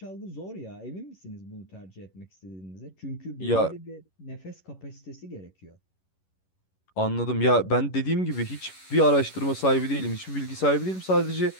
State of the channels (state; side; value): late; right; 11 ms